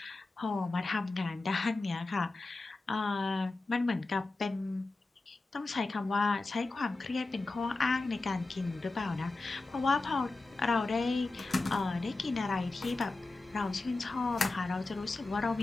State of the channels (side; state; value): right; quieter; 3.3 dB